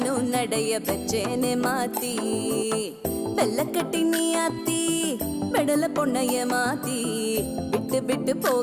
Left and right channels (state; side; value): identical; both; correlation 1.00